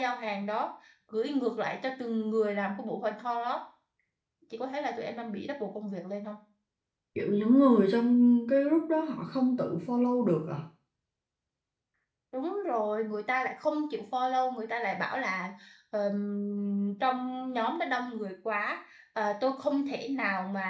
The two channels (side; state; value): both; identical; correlation 1.00